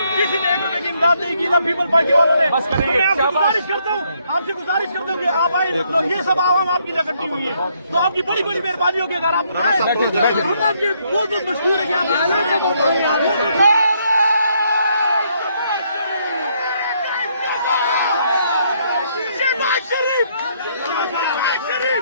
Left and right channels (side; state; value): both; inverted; correlation -0.71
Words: किसी ने 1 रुपए की इमदाद नहीं की ना पीपल पार्टी वालों ने। बस करेंगे। मैं आपसे गुजारिश करता हूँ कि आप आए, तो ये सब आवाम आपकी इकट्ठी हुई है, तो आपकी बड़ी बड़ी मेहरबानी होगी अगर आप आए। हम आपके बहुत मशहूर है कि आप